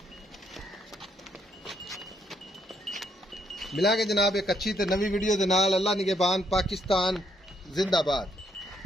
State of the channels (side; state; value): both; normal; correlation 0.73